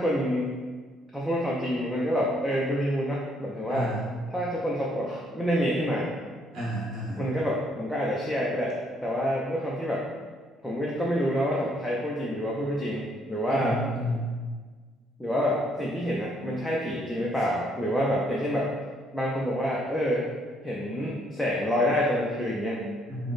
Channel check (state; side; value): normal; both; correlation 0.69